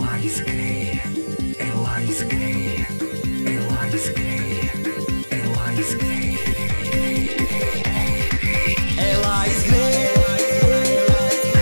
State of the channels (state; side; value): inverted; both; correlation -1.00